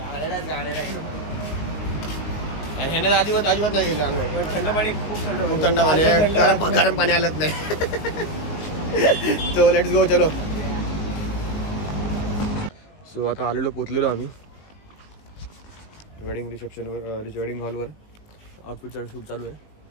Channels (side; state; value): right; late; 19 ms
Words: अजिबात नाही गेलं आंघोळ. थंड पाणी खूप थंड पाणी गरम पाणी आलंच नाही. सो लेट्स गो चलो. सो आता आलेलो पोचलेलो आम्ही वेडिंग रिसेप्शनवर वेडिंग हॉलवर. आउटफिटचा शूट चालू आहे.